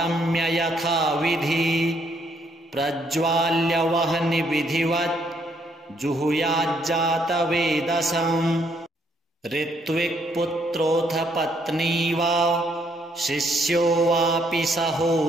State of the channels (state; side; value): normal; both; correlation 0.71